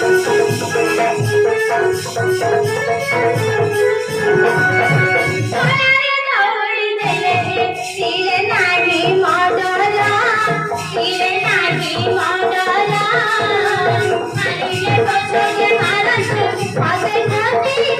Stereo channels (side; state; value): both; identical; correlation 1.00